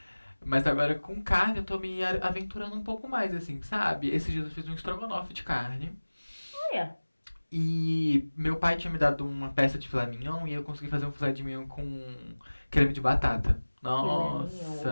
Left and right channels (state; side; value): inverted; both; correlation -1.00